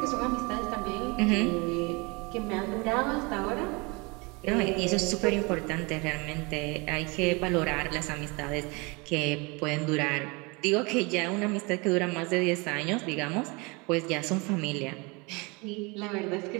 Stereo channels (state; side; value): quieter; left; 27.9 dB